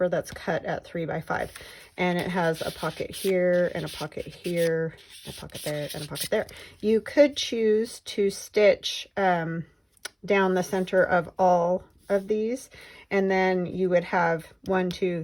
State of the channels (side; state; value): both; identical; correlation 1.00